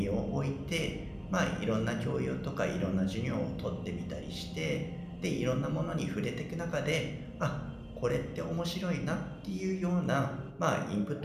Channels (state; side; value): identical; both; correlation 1.00